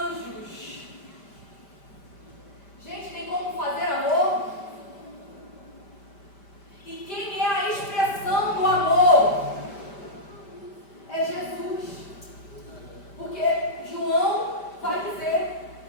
Gente, tem como fazer amor? E quem é a expressão do amor? É Jesus. Porque João vai dizer,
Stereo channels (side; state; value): right; late; 5.1 ms